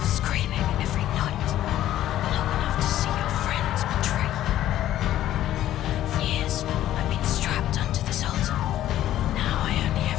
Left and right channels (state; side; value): quieter; right; 12.9 dB